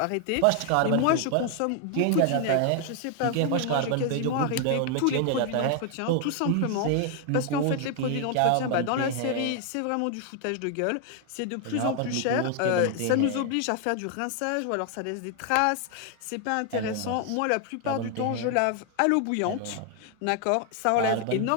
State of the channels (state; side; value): different; both; correlation 0.00